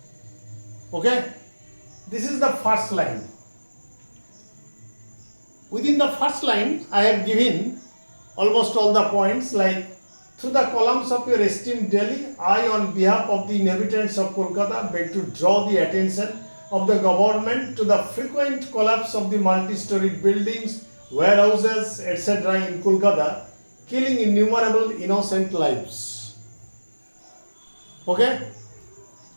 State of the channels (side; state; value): both; inverted; correlation -1.00